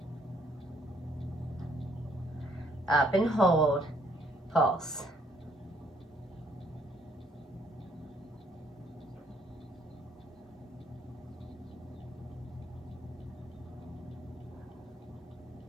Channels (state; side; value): normal; both; correlation 0.67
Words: up and hold, pulse.